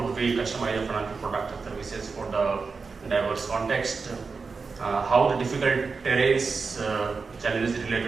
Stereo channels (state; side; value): quieter; left; 4.7 dB